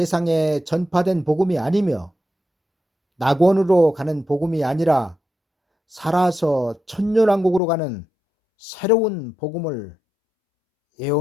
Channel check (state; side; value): drops out; right; at 7.6 s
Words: 전파된 복음이 아니며 낙원으로 가는 복음이 아니라 살아서 천년왕국으로 가는 새로운 복음을